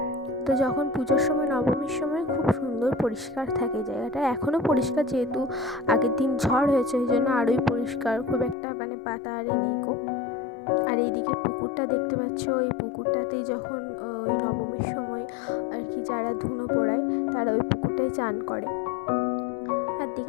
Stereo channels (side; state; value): right; drops out; at 8.6 s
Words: তো যখন পুজোর সময়, নবমীর সময় খুব সুন্দর পরিষ্কার থাকে জায়গাটা, এখনও পরিষ্কার, যেহেতু আগের দিন ঝড় হয়েছে ওই জন্য আরোই পরিষ্কার, খুব একটা পাতা আরে নেই গো। আর এইদিকে পুকুরটা দেখতে পাচ্ছ, এই পুকুরটাতেই যখন ওই নবমীর সময় আর কি যারা ধুনো পোড়ায় তারা ওই পুকুরটাই চান করে। আর